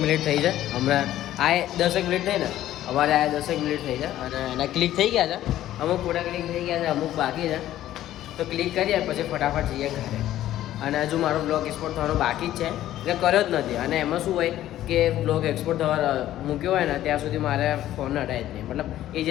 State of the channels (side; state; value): right; quieter; 13.2 dB